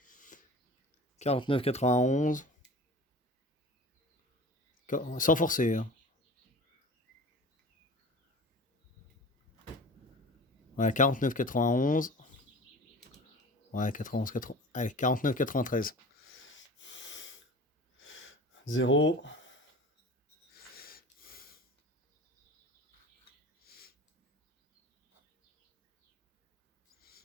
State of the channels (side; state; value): both; normal; correlation 0.38